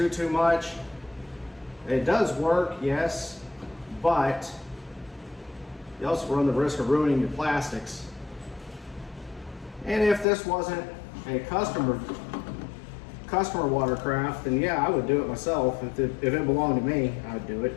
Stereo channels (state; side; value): drops out; right; at 10.2 s